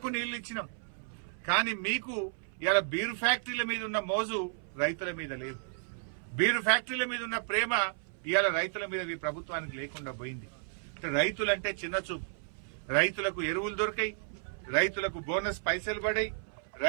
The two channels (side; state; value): left; silent; 56 dB below the other